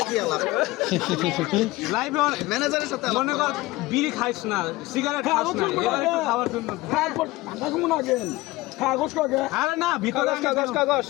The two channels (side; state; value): right; quieter; 19.7 dB